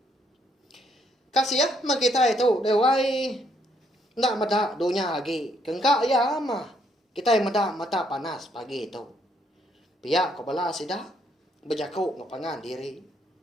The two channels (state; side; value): normal; both; correlation 0.71